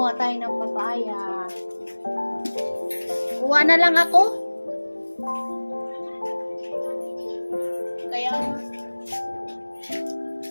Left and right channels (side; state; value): both; inverted; correlation -1.00